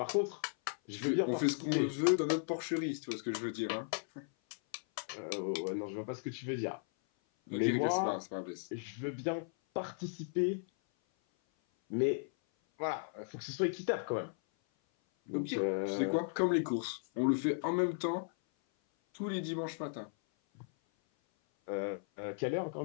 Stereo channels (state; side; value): silent; right; 54 dB below the other